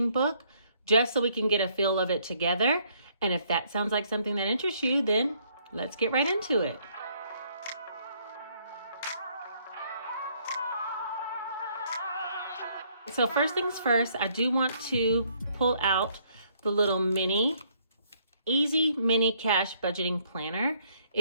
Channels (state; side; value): inverted; both; correlation -0.67